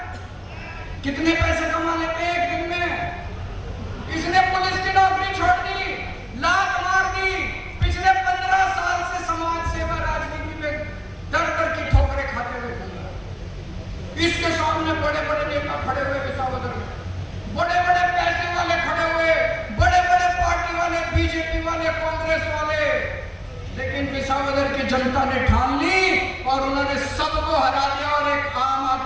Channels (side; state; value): both; identical; correlation 1.00